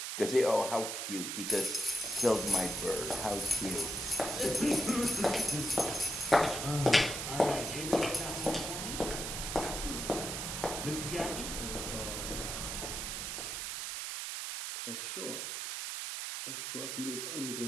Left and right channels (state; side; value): noise; right; hiss, 4 dB below the sound